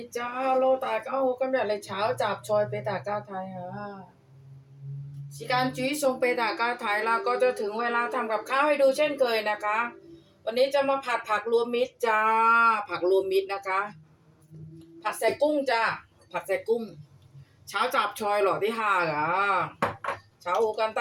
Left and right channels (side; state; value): both; identical; correlation 1.00